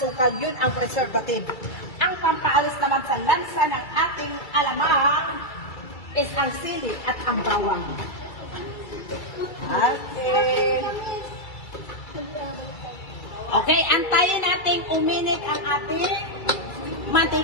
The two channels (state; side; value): late; right; 2.3 ms